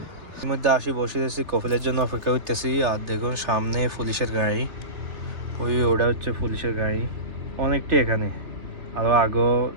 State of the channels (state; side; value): late; left; 3.3 ms